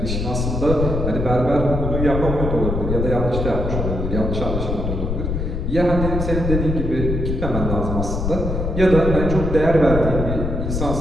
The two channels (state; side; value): noise; left; rumble, 2 dB below the sound